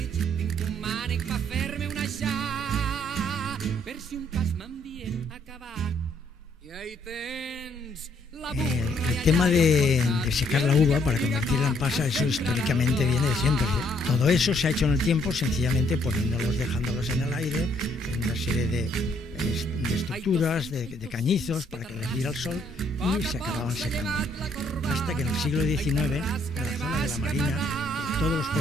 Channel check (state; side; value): normal; both; correlation 0.68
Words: El tema de secar la uva para convertirla en pasa, eso históricamente viene de siempre. Todo eso se ha hecho en el tiempo sencillamente dejándolos en el aire, en una serie de estructuras, de cañizos para que les diera el sol y se acababan secando. Hasta que en el siglo XIX, en la zona de la Marina, todos los